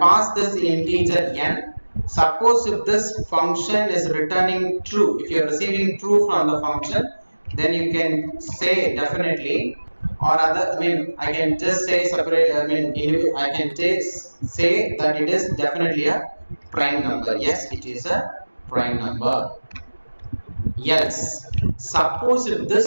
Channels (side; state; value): both; inverted; correlation -1.00